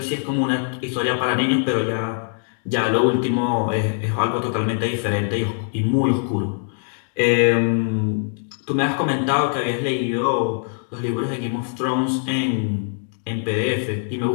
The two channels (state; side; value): silent; right; 64 dB below the other